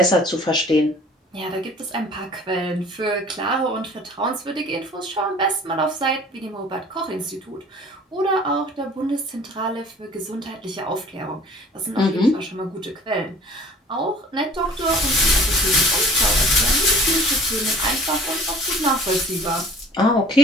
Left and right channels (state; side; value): normal; both; correlation 0.48